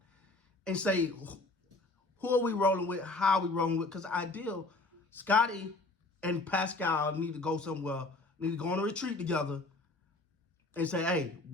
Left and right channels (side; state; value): right; quieter; 3.1 dB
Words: and say, who are we rolling with? How are we rolling with? Because ideal, Scotty and Pascal need to go somewhere, need to go on a retreat together and say, hey,